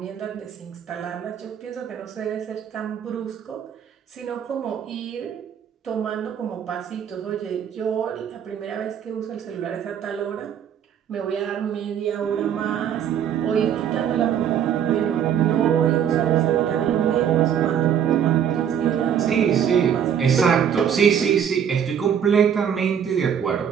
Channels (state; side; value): quieter; left; 8.6 dB